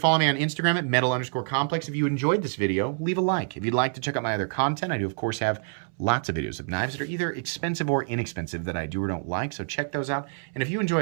me on Instagram at metal_complex. If you enjoyed this video, leave a like. If you'd like to check out my other content, I do, of course, have lots of videos of knives that are either expensive or inexpensive that I do or don't like, so check those out. And if you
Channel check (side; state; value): left; silent; 60 dB below the other